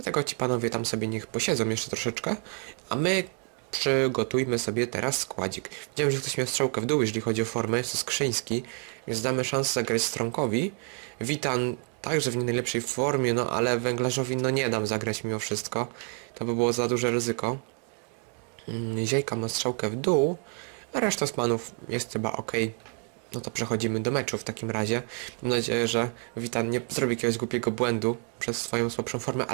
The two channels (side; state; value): left; quieter; 39.0 dB